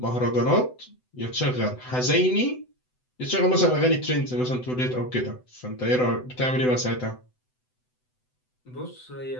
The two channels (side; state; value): right; late; 7.9 ms